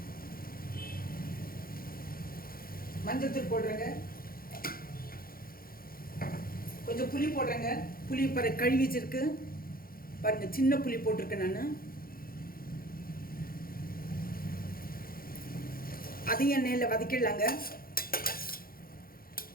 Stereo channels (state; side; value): late; right; 0.42 ms